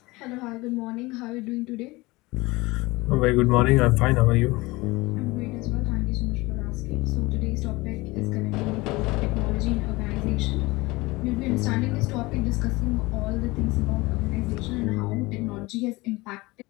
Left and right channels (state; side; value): quieter; right; 22.0 dB